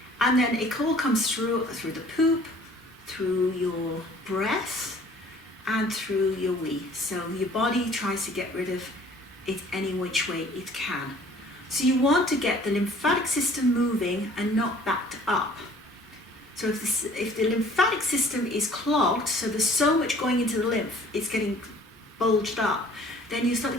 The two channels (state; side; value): normal; both; correlation 0.53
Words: And then it all comes through the poop, through your breath, and through your wee. So your body tries to get rid of it any which way it can. So you want to get the lymphatic system moving and not backed up. So if the lymphatic system is clogged, so there's so much going into the lymph, it's getting bulged up, then you start to